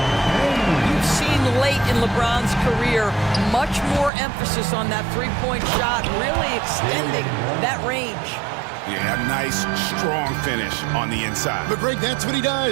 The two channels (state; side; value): drops out; left; at 4.1 s